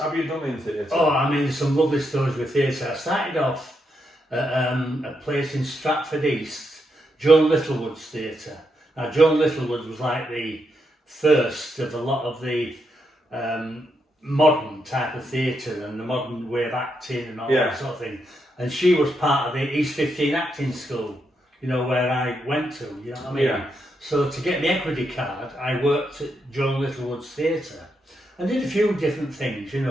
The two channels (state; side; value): normal; both; correlation 0.81